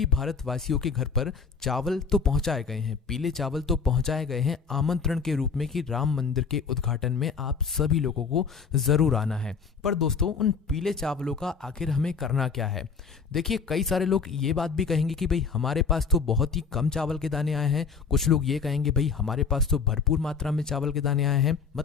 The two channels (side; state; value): right; quieter; 5.5 dB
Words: भारतवासियों के घर पर चावल तो पहुंचाए गए हैं, पीले चावल तो पहुंचाए गए हैं आमंत्रण के रूप में कि राम मंदिर के उद्घाटन में आप सभी लोगों को जरूर आना है। पर दोस्तों उन पीले चावलों का आखिर हमें करना क्या है? देखिए, कई सारे लोग ये बात भी कहेंगे कि भाई हमारे पास तो बहुत ही कम चावल के दाने आए हैं। कुछ लोग ये कहेंगे भाई हमारे पास तो भरपूर मात्रा में चावल के दाने आए हैं,